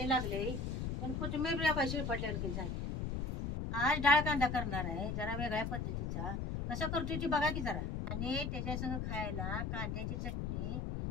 लागले पण कोथिंबीर पैसे पटल्यावर झाली. आज डाळ कांदा करणार आहे जरा वेगळ्या पद्धतीचा. कसा करतोय ती बघा की जरा. आणि त्याच्या संग खायला कांद्याची चटणी,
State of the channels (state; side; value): noise; left; rumble, 2 dB below the sound